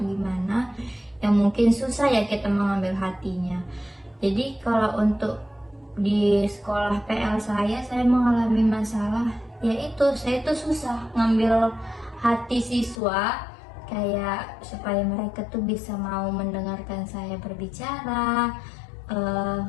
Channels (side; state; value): right; drops out; at 13.0 s